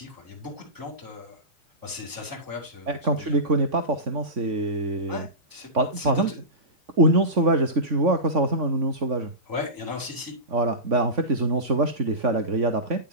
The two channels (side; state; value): left; late; 3.5 ms